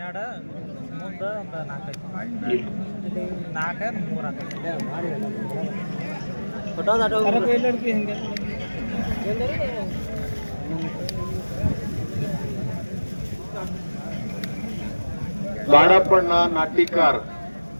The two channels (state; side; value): inverted; both; correlation -1.00